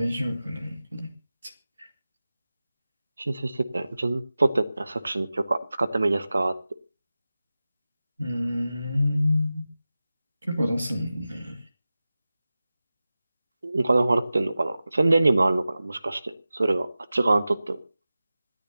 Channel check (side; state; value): both; inverted; correlation -0.95